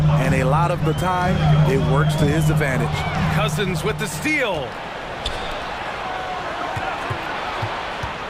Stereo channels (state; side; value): identical; both; correlation 1.00